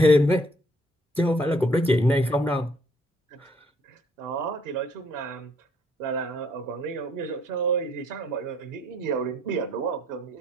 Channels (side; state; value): both; normal; correlation 0.65